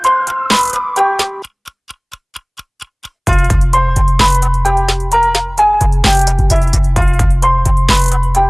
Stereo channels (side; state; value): both; identical; correlation 1.00